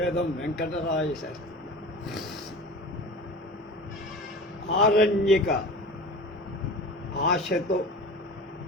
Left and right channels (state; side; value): normal; both; correlation 0.35